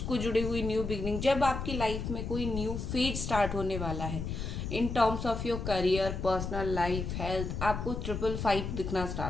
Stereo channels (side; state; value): left; noise; rumble, 4 dB below the sound